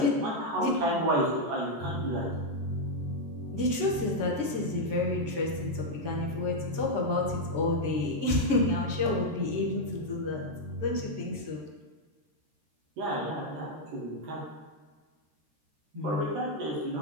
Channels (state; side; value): late; left; 13 ms